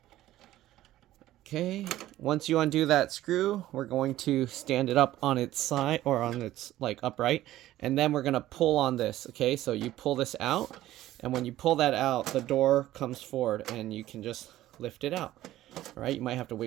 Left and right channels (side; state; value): left; quieter; 14.6 dB